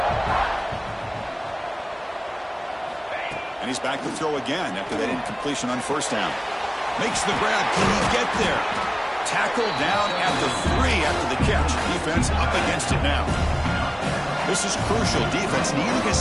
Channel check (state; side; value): identical; both; correlation 1.00